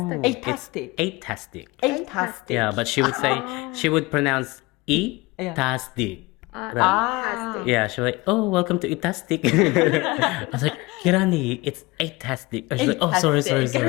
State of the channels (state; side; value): quieter; right; 22.6 dB